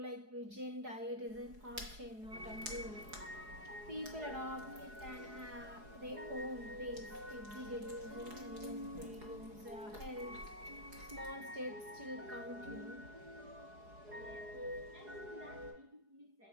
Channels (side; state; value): left; late; 4.8 ms